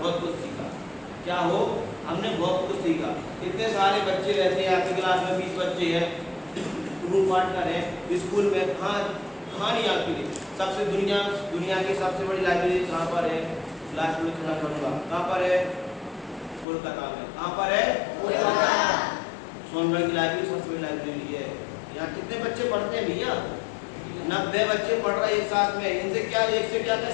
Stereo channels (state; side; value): drops out; right; at 16.7 s